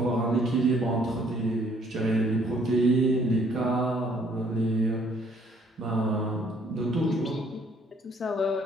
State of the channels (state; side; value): normal; both; correlation 0.63